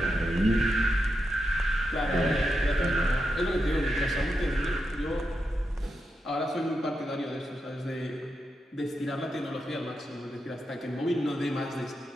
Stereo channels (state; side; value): normal; both; correlation 0.86